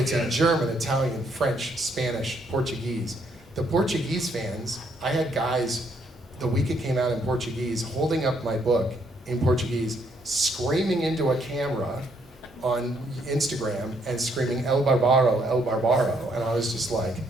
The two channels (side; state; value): both; normal; correlation 0.70